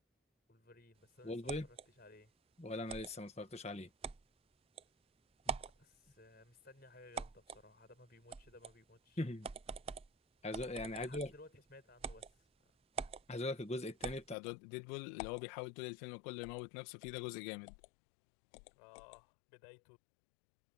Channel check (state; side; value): drops out; right; at 14.4 s